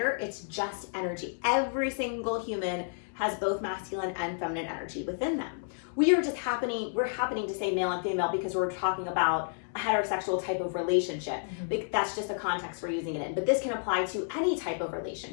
It's just energy. Every single human has both masculine and feminine energy within them. We're happening to say male and female because we're talking about a heterosexual type of relationship. That's just the context we're using it in. But this can apply to any type of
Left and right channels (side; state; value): right; silent; digital silence